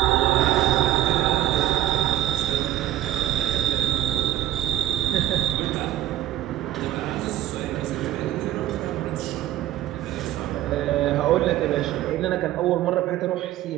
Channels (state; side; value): quieter; left; 13.5 dB